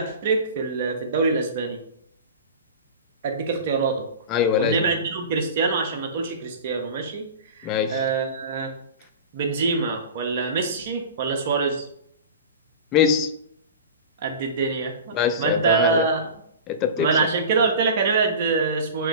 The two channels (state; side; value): inverted; both; correlation -0.33